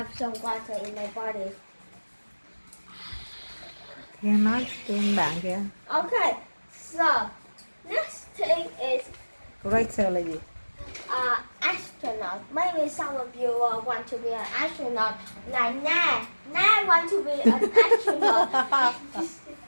some water in my body. Kia nói trên bạn kìa. Okay, so next thing is Greater là gì? astronaut. Maybe some of you want to be an astronaut, like Na. Na want to be an astronaut.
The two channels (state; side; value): inverted; both; correlation -1.00